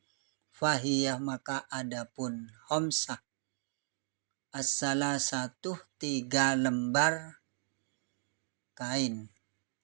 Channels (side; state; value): left; silent; digital silence